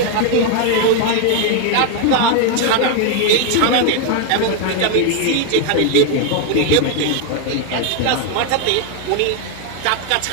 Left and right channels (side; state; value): both; different; correlation 0.01